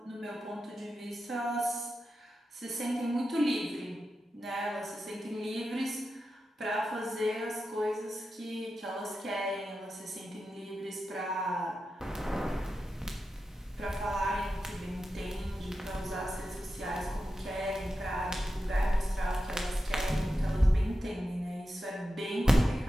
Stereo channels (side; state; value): both; normal; correlation 0.91